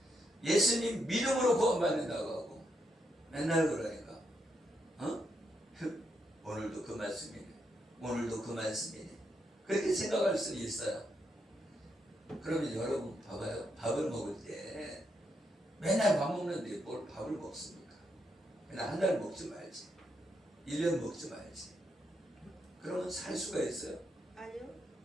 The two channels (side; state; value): both; normal; correlation 0.80